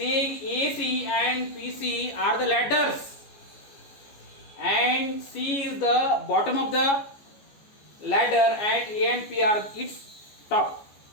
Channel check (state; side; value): late; right; 14 ms